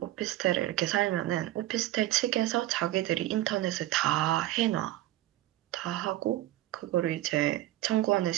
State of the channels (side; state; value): left; quieter; 15.3 dB